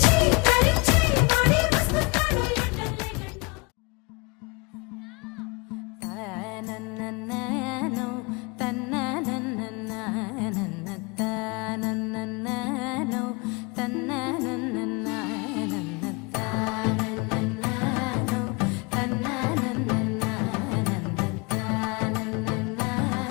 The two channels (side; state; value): right; quieter; 27.9 dB